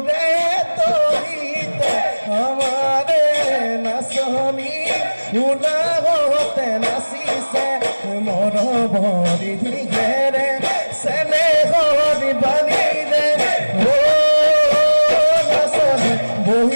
তৰিতে আমাৰে নাচনি উলাগতে নাচিছে মৰ ভৰি ঘেৰে চেনে হৰি বালিৰে ও নাচনি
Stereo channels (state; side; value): inverted; both; correlation -1.00